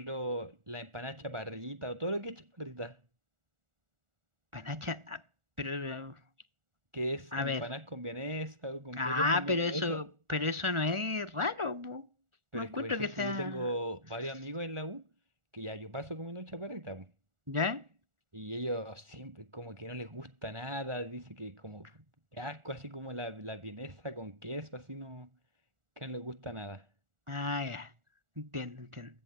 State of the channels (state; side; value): late; left; 1.4 ms